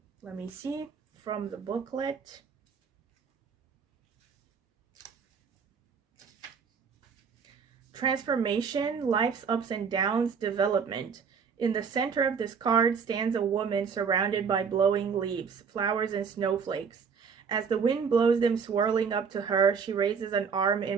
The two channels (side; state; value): left; quieter; 6.2 dB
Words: Let me see from the booklet. Transformation, life's ups and downs, development. In the center of this card stands a woman surrounded by blowing leaves, flowers, and snowflakes. As the wind blows them swirling up to her, she raises an arm